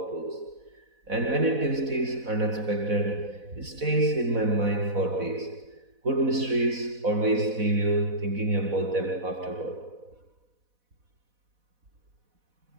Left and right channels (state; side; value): late; left; 4.1 ms